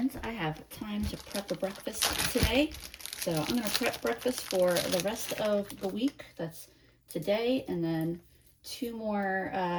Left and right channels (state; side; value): identical; both; correlation 1.00